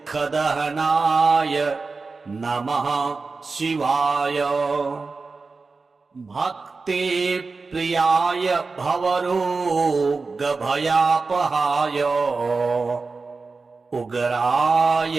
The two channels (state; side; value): quieter; left; 4.2 dB